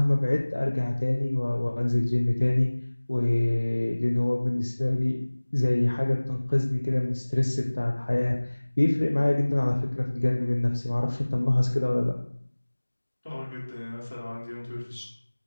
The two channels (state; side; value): inverted; both; correlation -1.00